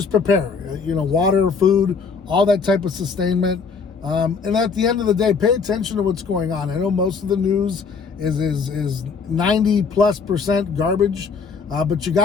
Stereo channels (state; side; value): quieter; right; 5.3 dB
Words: prepare, water, food, all that type of sustainment. And at the end of the day, pay attention to what's going on. I know most of the news is 90+% garbage, but you